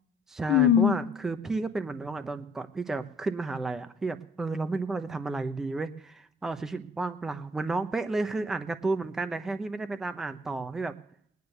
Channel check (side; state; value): both; normal; correlation 0.57